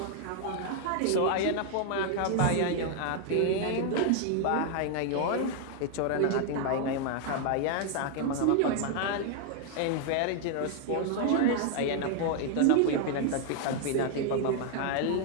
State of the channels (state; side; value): different; both; correlation 0.00